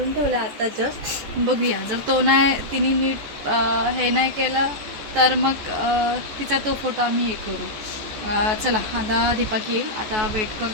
ठेवला आता जस्ट. बघूया जर तो नाही तिने नीट हे नाही केलं तर मग तिचा तो फोटो आम्ही हे करू. चला आता दीपक येईल, आता वेट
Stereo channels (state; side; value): late; left; 14 ms